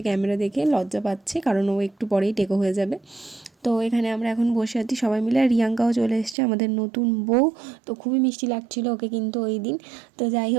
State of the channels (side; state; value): left; drops out; at 6.4 s